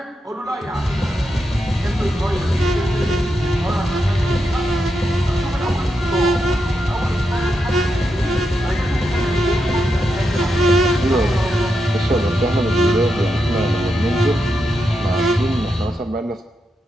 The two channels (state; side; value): normal; both; correlation 0.85